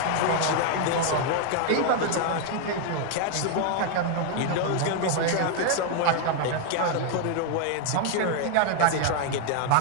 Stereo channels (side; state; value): both; different; correlation 0.00